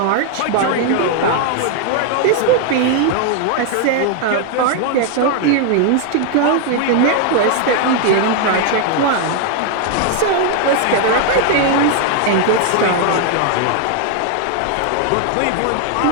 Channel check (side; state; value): both; different; correlation 0.00